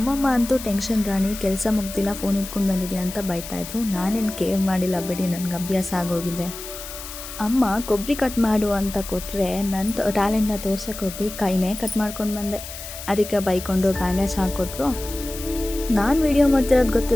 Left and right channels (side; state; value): left; noise; hiss, 11 dB below the sound